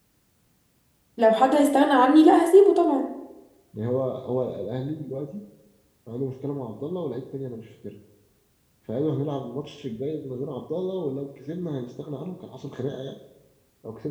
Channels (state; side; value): identical; both; correlation 1.00